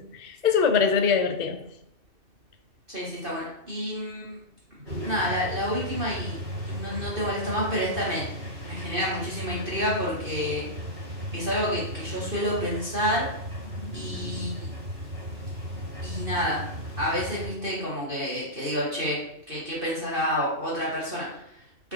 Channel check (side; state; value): left; late; 2.7 ms